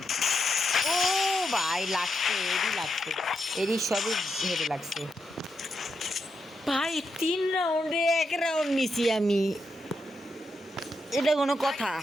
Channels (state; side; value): normal; both; correlation 0.84